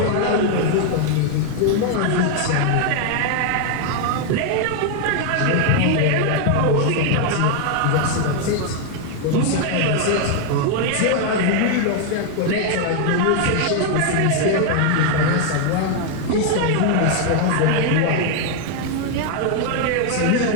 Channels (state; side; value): different; both; correlation 0.00